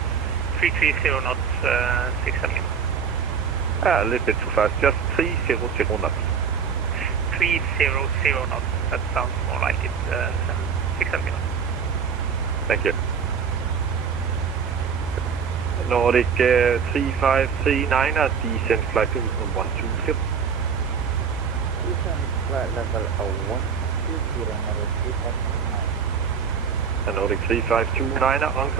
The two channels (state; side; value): quieter; left; 6.5 dB